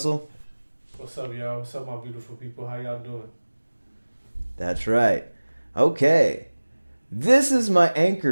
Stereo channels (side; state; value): both; inverted; correlation -1.00